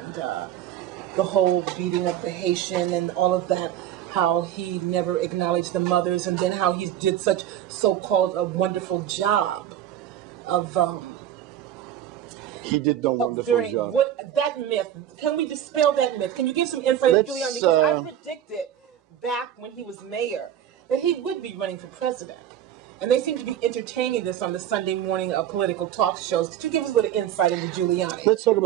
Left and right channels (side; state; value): left; quieter; 11.0 dB